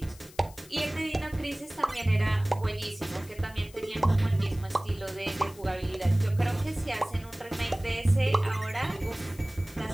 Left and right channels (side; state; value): left; noise; hiss, 22 dB below the sound